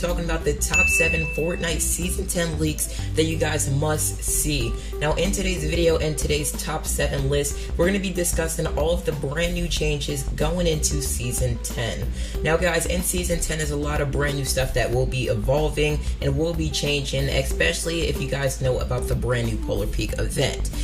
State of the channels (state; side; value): identical; both; correlation 1.00